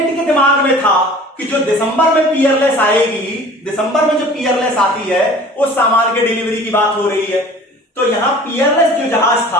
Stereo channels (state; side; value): normal; both; correlation 0.45